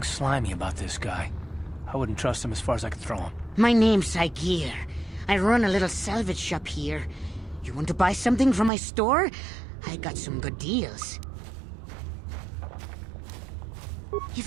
slimy about this guy. I wouldn't trust him as far as I could throw him. My name's Saigir. I run a little salvage shop here. You want to buy something from my store? I got some good deals.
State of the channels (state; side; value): drops out; left; at 8.7 s